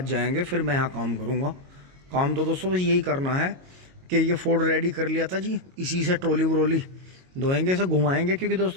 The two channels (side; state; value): left; late; 22 ms